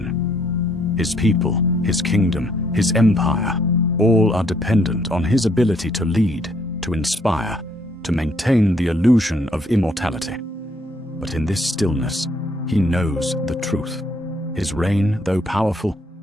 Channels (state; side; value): normal; both; correlation 0.68